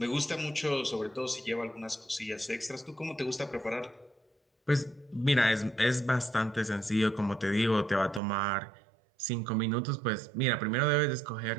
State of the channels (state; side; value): drops out; left; at 8.2 s